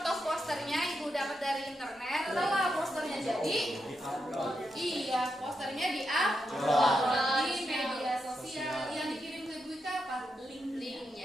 posternya Ibu dapat dari internet. Setelah posternya jadi, iya posternya di media sosial yang dikirim ke Ibu apa?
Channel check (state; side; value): normal; both; correlation 0.84